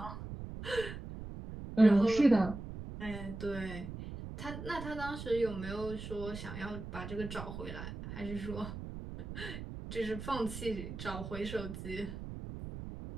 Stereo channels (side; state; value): right; noise; rumble, 9 dB below the sound